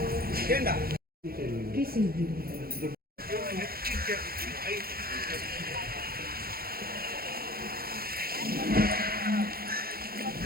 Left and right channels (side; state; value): left; late; 0.44 ms